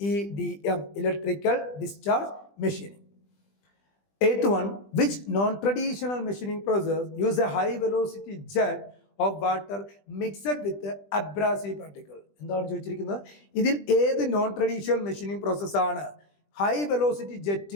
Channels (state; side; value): late; right; 20 ms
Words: EDM electrical discharge machining. Eighth one, which non-traditional machining process use a high velocity jet of water mixed with abrasive particle? എന്താണ് ചോദിച്ചിരിക്കുന്നത്? ഇതിൽ ഏത് നോൺ ട്രഡീഷണൽ മെഷീനിങ് പ്രോസസ്സാണ് high velocity